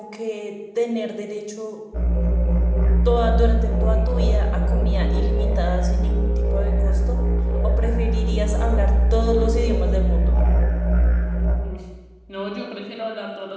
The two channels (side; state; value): both; identical; correlation 1.00